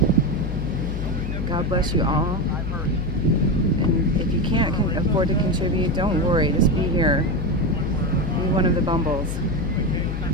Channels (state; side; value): noise; left; hum, 4 dB below the sound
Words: God bless you all. And if you can't afford to contribute, don't worry. Just be here. Be one of the Bumbles.